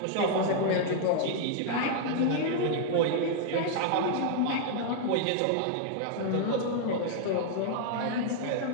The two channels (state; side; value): different; both; correlation -0.01